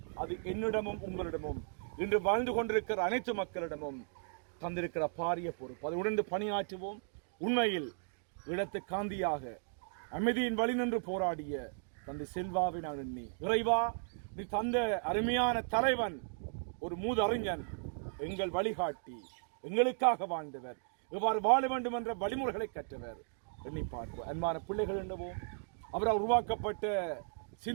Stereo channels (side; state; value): left; silent; digital silence